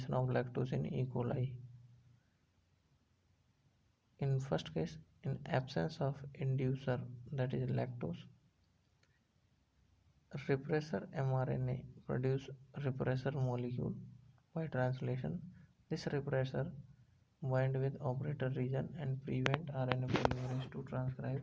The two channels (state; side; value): identical; both; correlation 1.00